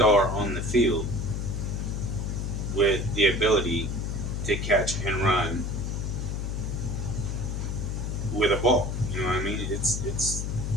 on the field with the ability to catch and run with a ball. You know what I mean? It's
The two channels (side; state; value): left; noise; hum, 2 dB below the sound